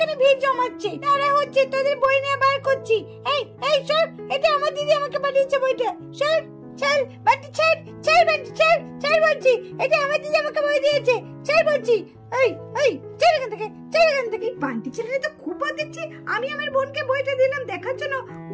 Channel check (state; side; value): identical; both; correlation 1.00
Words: ভিড় জমাচ্ছে, তারা হচ্ছে তোদের বই নিয়ে বার করছি। এই এই সর, এটা আমার দিদি আমাকে পাঠিয়েছে বইটা, সর চল বান্টি ছাড়, ছাড় বান্টি ছাড়, ছাড় বলছি, এটা আমার দিদি আমাকে বই দিয়েছে, ছাড় বলছি। এই এই ছাড় এখান থেকে, ছাড় এখান থেকে। বান্টি ছেলেটা তো খুব বাদ দিচ্ছি, আমি আমার বোনকে বইটা দিলাম দেখার জন্য,